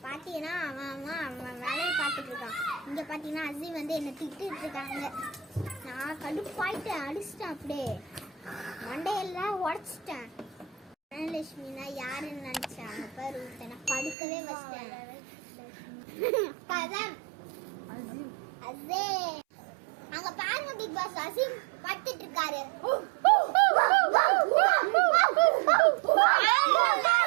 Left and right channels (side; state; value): left; drops out; at 14.2 s